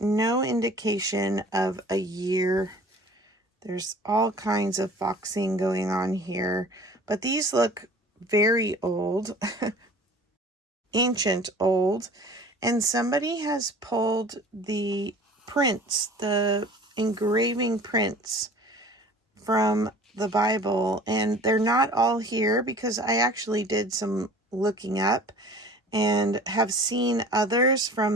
indication of a year. There's all kinds of foxing going on here, but these look very old, ancient old, and somebody has pulled the prints, the engraving prints from the Bible, and they're not all here because I actually did some looking up and have seen others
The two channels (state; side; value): normal; both; correlation 0.46